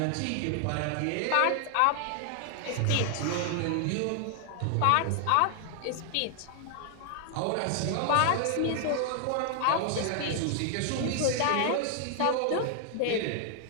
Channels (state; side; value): different; both; correlation 0.00